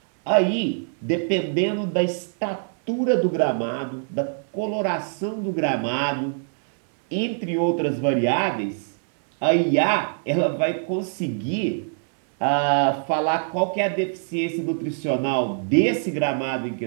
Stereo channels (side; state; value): left; silent; digital silence